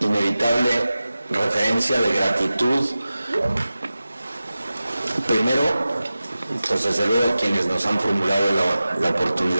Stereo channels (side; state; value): both; inverted; correlation -0.95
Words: referencia de gratitud. Primero, pues desde luego quienes nos han formulado la